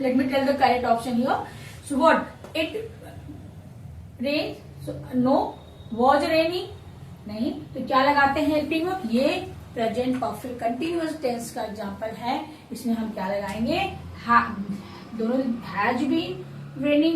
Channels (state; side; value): identical; both; correlation 1.00